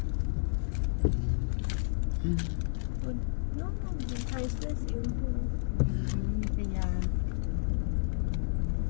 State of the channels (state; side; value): silent; right; 57 dB below the other